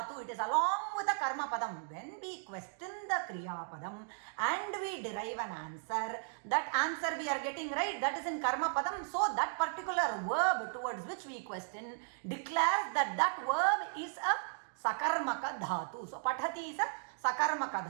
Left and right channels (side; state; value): left; silent; digital silence